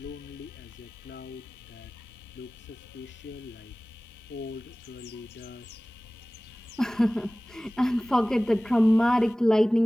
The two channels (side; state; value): both; normal; correlation 0.98